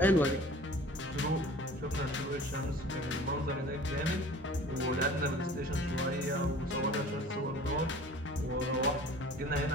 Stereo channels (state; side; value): normal; both; correlation 0.45